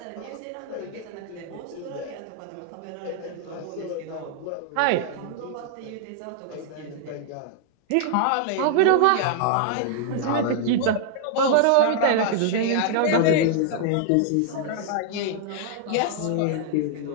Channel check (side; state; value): both; different; correlation -0.01